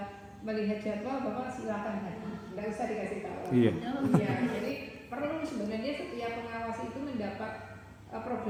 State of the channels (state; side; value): identical; both; correlation 1.00